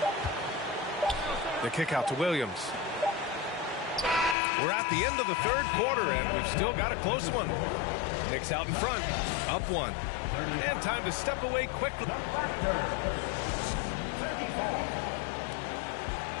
The kick out to Williams. We're at the end of the third quarter, and we've still got a close one. Knicks out in front, up 1. And time to step away quickly.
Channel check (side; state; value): right; drops out; at 4.4 s